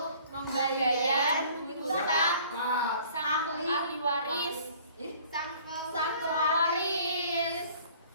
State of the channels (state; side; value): inverted; both; correlation -0.53